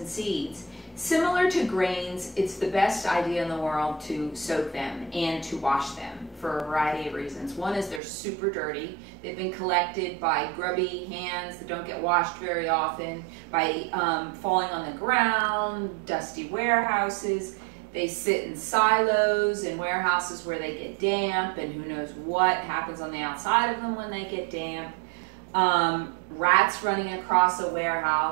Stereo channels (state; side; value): drops out; left; at 8.0 s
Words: seeds. Similar to grains, it's the best idea in the world to soak them and to wash them for a variety of reasons. One is they're super dirty. They've been collected by grubby hands that don't get washed very often, by falling on the ground, dusty warehouses. They sit in silos in warehouses where they get damp, and who knows what happens on the outside of them when they get damp. Rats running across a